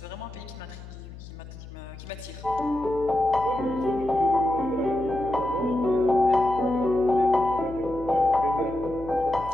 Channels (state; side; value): noise; left; hum, 15 dB below the sound